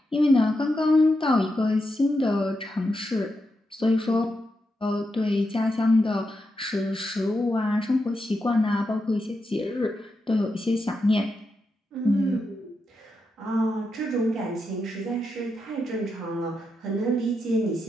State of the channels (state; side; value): normal; both; correlation 0.85